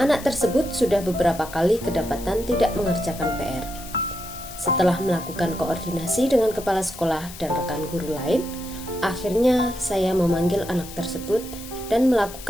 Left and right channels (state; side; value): noise; left; hiss, 14 dB below the sound